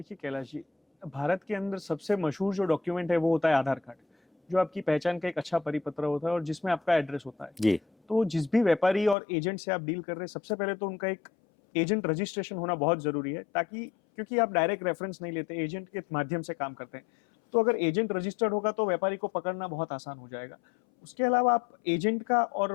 कैलाश जी, भारत के अंदर सबसे मशहूर जो डॉक्यूमेंट है वो होता है आधार कार्ड, जो आपकी पहचान का एक अच्छा परिपत्र होता है और जिसमें आपका एड्रेस होता है। जी। तो जिस भी व्यापारी और एजेंट से आप डील कर रहे हैं, सबसे पहले तो उनका एक एजेंट रजिस्ट्रेशन होना बहुत ज़रूरी है, ताकि क्योंकि आप डायरेक्ट रेफरेंस नहीं लेते, एजेंट के माध्यम से काम करते हैं। तो अगर एजेंट रजिस्टर्ड होगा तो व्यापारी को पकड़ना बहुत आसान हो जाएगा। उसके अलावा आप एजेंट का और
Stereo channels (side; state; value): right; drops out; at 9.2 s